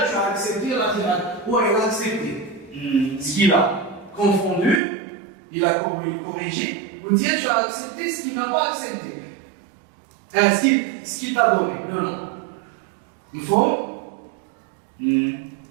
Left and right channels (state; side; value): drops out; left; at 4.8 s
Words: as accepté la tirade? Oui, il a accepté. Ce qu'il a confondu, il a corrigé. Ou dire tu as accepté ce qu'il n'a pas accepté. Ce qu'il t'a donné. Non, non. Il faut.